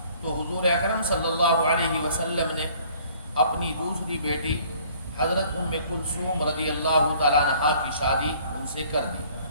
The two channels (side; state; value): both; inverted; correlation -0.56